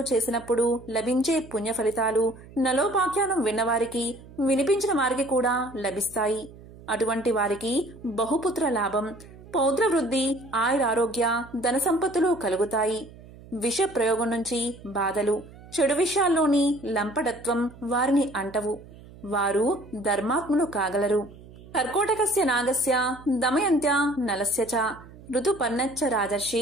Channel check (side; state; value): right; noise; hum, 20 dB below the sound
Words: చేసినప్పుడు లభించే పుణ్య ఫలితాలు నలోపాఖ్యానం విన్నవారికి, వినిపించిన వారికి కూడా లభిస్తాయి. అటువంటి వారికి బహుపుత్ర లాభం, పౌత్ర వృద్ధి, ఆయురారోగ్య, ధన సంపత్తులు కలుగుతాయి. విష ప్రయోగం నుంచి బాధలు, చెడు విషయాల్లోని లంపటత్వం వారిని అంటవు. వారు ధర్మాత్ములు కాగలరు. కర్కోటకస్య నాగస్య దమయంత్య నలస్య చ ఋతుపర్ణచ్చ